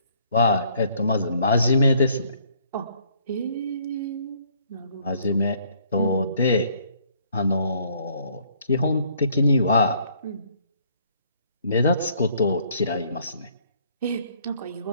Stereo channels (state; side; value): inverted; both; correlation -0.63